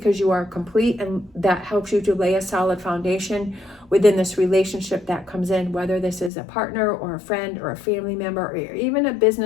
you are complete, and that helps you to lay a solid foundation within this relationship that comes in, whether this is a partner or a friend or a family member or even a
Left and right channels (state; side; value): drops out; right; at 6.3 s